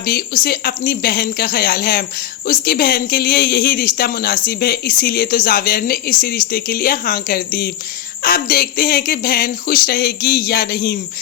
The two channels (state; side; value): quieter; right; 12.3 dB